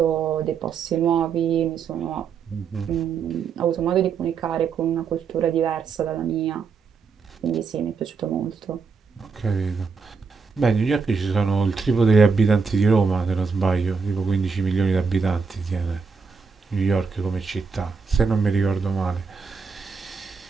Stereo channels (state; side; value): quieter; left; 5.4 dB